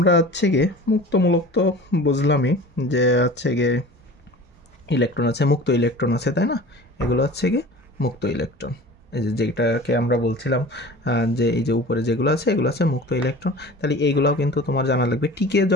হচ্ছে গিয়ে মুক্তমূলক তো বুঝলামই যে হচ্ছে গিয়ে ইলেকট্রন আছে, মুক্ত ইলেকট্রন আছে, তাই না, এগুলো হচ্ছে গিয়ে মুক্ত ইলেকট্রন। এই যেটাকে আমরা বলছিলাম যে এই যে উপরে যেগুলো আছে এগুলো আছে মুক্ত ইলেকট্রন। তাহলে এইগুলোও কিন্তু তোমার জানা লাগবে। টিকে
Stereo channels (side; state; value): both; normal; correlation 0.39